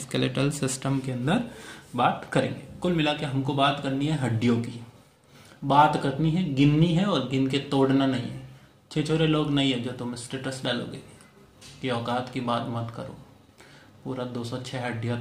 सिस्टम के अंदर बात करेंगे। कुल मिला के हमको बात करनी है हड्डियों की, बात करनी है, गिननी है और गिन के तोड़ना नहीं है। छिछोरे लोग नहीं है जो तुम स्टेटस डालोगे कि औकात की बात मत करो, पूरा 206 हड्डियां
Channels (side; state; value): both; identical; correlation 1.00